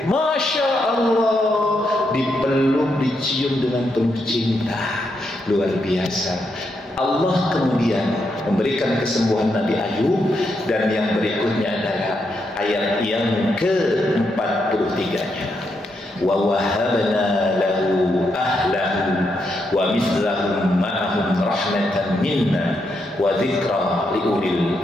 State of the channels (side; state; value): both; normal; correlation 0.81